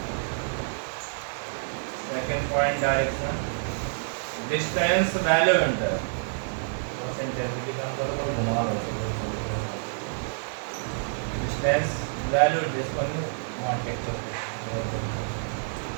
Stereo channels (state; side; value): silent; left; digital silence